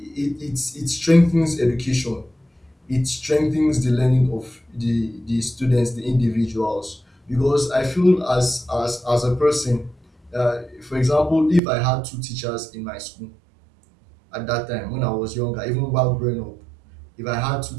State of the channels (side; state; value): left; drops out; at 11.6 s